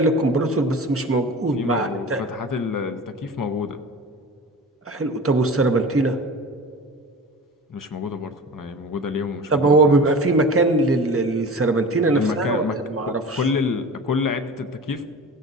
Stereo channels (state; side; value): normal; both; correlation 0.36